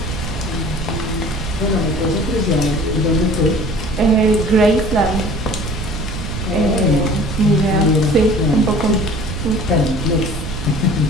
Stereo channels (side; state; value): right; noise; rumble, 7 dB below the sound